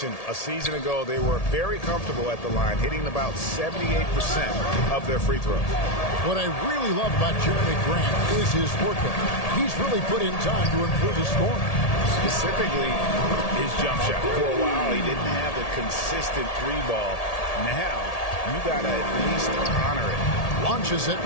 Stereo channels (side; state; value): right; late; 1.8 ms